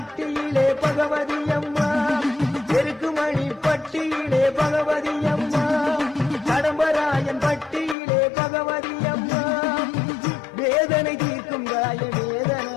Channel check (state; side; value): drops out; right; at 8.0 s